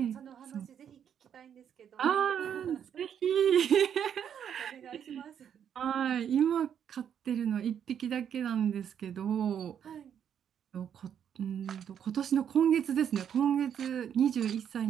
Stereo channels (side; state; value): left; quieter; 8.7 dB